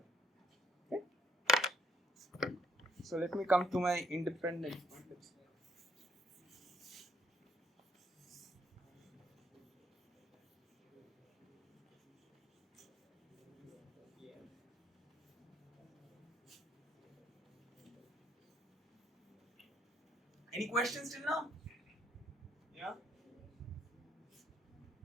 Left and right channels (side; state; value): both; normal; correlation 0.69